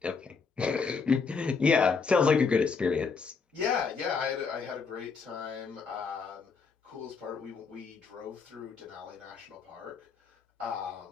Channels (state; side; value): quieter; right; 5.2 dB